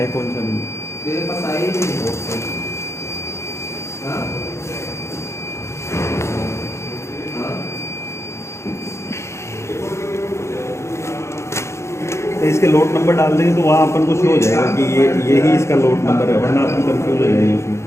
कौन सा नहीं। तेरे पास आई ही नहीं। हाँ? तो इसके लोड नंबर डाल देंगे तो वहाँ अपन को शो हो जाएगा कि ये ही इसका लोड नंबर है, वरना अपन कंफ्यूज हो जाएंगे उसमें।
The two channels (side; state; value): right; late; 0.13 ms